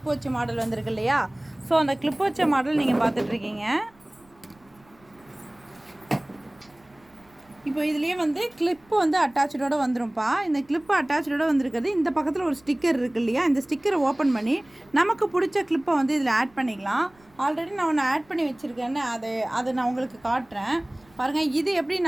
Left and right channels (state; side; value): noise; right; rumble, 30 dB below the sound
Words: வச்ச மாடல் வந்திருக்கு இல்லையா? ஸோ அந்த கிளிப் வச்ச மாடல் நீங்கள் பார்த்துட்ருக்கீங்க. இப்போ இதுலேயே வந்து கிளிப்பு வந்து அட்டாச்சோடு வந்துடும்ப்பா. இந்த கிளிப்பு அட்டாச்சோடு வந்திருக்கிறது. இந்த பக்கத்தில் ஒரு ஸ்டிக்கர் இருக்குது இல்லையா? இந்த ஸ்டிக்கரை ஓப்பன் பண்ணி நமக்கு பிடிச்ச கிளிப்பை வந்து இதில் ஆட் பண்ணிக்கலாம். ஆல்ரெடி நான் ஒன்று ஆட் பண்ணி வச்சுருக்கேன்னு அதை நான் உங்களுக்கு காட்டுறேன் பாருங்கள். இது